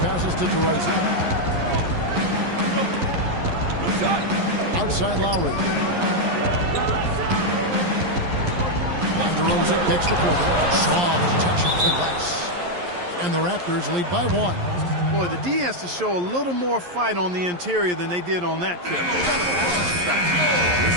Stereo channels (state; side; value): late; left; 11 ms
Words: passes to DeRozan. Outside Lowry. And DeRozan kicks to Porter. Soft touch off the glass. And the Raptors lead by 1. Boy, the D has to show a little more fight on the interior than they did on that trip.